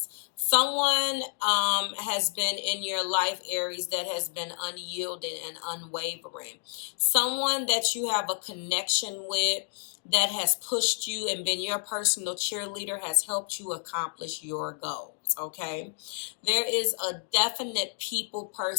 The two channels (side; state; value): right; silent; 58 dB below the other